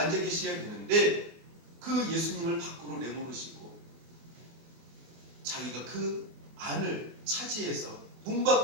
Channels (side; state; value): left; late; 24 ms